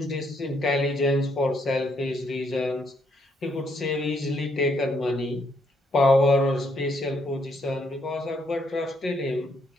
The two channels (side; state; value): both; normal; correlation 0.72